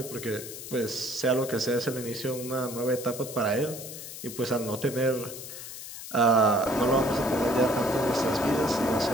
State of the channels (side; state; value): left; noise; hiss, 11 dB below the sound